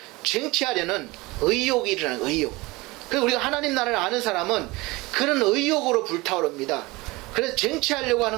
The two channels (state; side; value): quieter; left; 22.3 dB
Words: 쟁취하려는 의욕이 일어나는 의욕. 그래서 우리가 하나님 나라를 아는 사람은 그런 의욕으로 불타오릅니다. 그래서 쟁취하려고